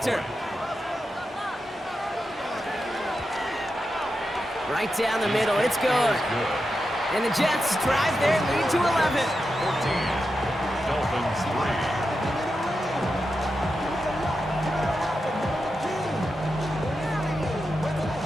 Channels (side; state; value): both; normal; correlation 0.89